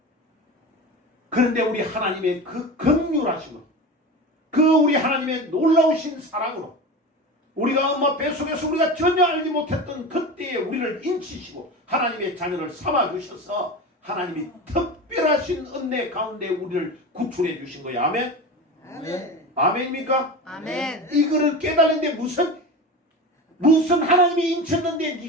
그런데 우리 하나님의 그 긍휼하심으로 그 우리 하나님의 놀라우신 사랑으로 우리가 엄마 뱃속에서 우리가 전혀 알지 못했던 그때에 우리를 인치시고 하나님의 자녀를 삼아주셔서 하나님이 특별하신 은혜 가운데 우리를 구출해 주신 거예요. 아멘? 아멘. 아멘입니까? 아멘. 이거를 깨달는데 무슨 하나님이 인쳤는데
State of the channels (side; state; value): both; normal; correlation 0.28